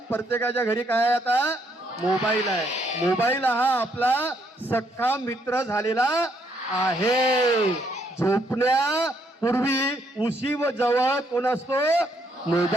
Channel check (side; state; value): both; normal; correlation 0.72